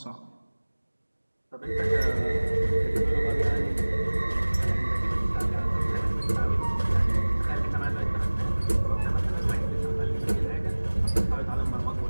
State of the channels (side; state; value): both; inverted; correlation -1.00